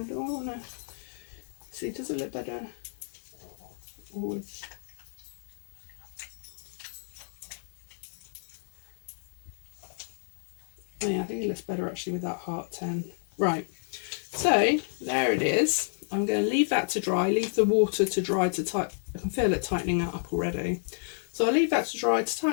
do I want to see? Does it look better? Oh yeah, I think it looks better actually with that heart 10. Right, so there it is. I'm going to leave that to dry, leave the water to dry to tighten. I can feel it tightening up already. So I'll leave that to dry to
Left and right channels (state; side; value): silent; right; digital silence